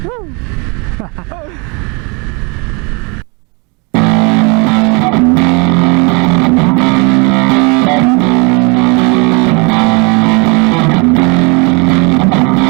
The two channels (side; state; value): left; quieter; 31.1 dB